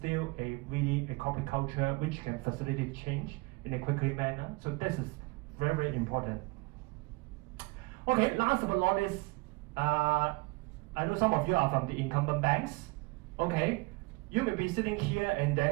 a corporate culture which can facilitate change in a quickly manner. So this is very, very important. Okay, last but not least, I know some of you are from the incumbent banks. Okay, you may be sitting here and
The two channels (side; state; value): left; quieter; 26.2 dB